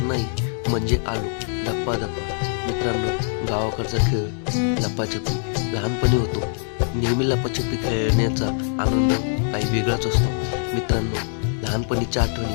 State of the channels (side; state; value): right; silent; digital silence